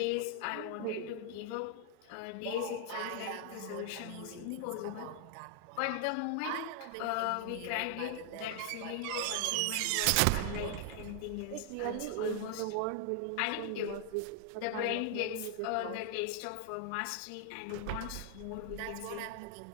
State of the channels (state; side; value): different; both; correlation 0.00